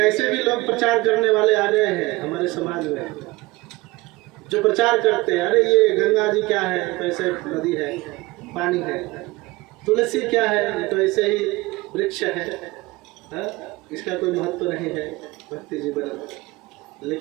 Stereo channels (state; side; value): quieter; left; 21.3 dB